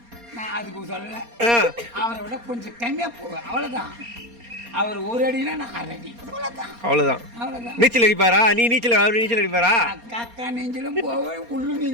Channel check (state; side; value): late; left; 4.3 ms